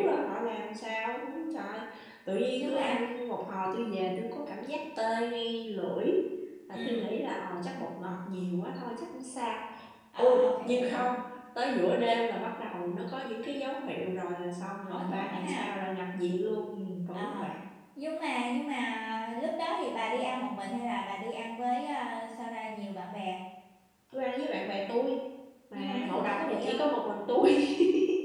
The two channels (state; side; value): identical; both; correlation 1.00